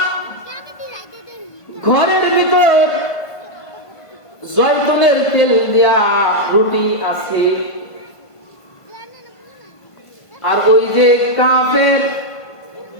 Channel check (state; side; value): late; right; 1.5 ms